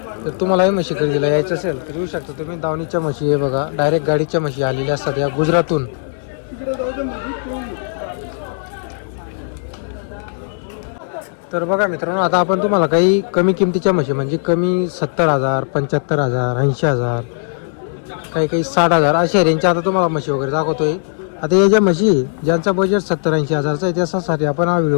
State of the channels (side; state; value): right; silent; digital silence